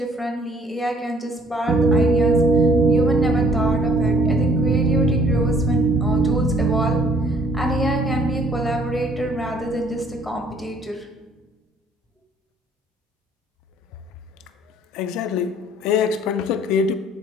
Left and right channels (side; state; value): both; normal; correlation 0.59